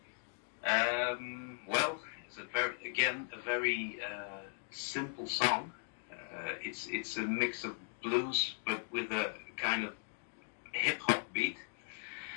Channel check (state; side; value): silent; right; digital silence